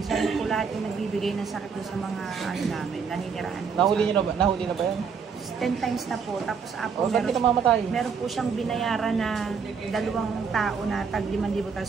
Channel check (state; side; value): quieter; left; 6.0 dB